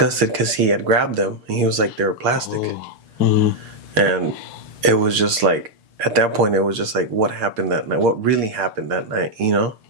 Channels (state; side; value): late; left; 6.6 ms